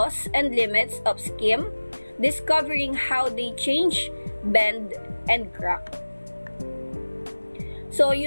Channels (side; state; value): both; inverted; correlation -1.00